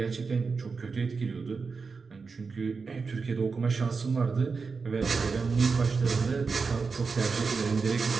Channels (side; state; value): left; quieter; 4.8 dB